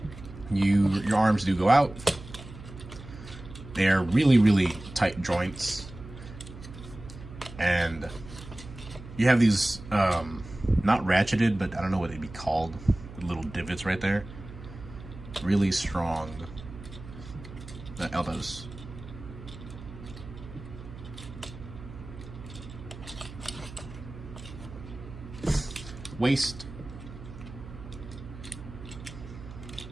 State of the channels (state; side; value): noise; right; hum, 14 dB below the sound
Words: Your arms do go out. They're really, really tight joints. And you have these, not ratcheted, but I don't know what they'd be called. Little divots right there. Really strong elbows. Waist.